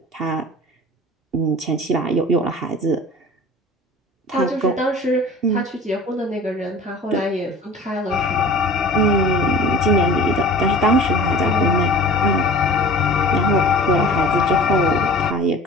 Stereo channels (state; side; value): normal; both; correlation 0.41